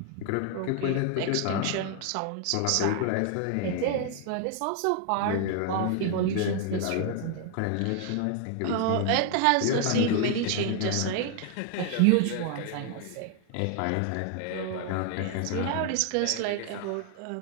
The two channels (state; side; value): different; both; correlation 0.00